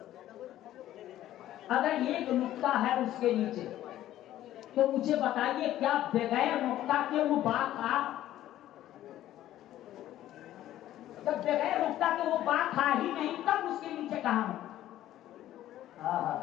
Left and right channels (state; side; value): quieter; right; 13.3 dB